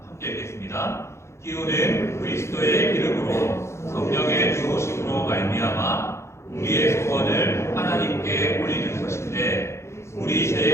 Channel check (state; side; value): late; right; 0.13 ms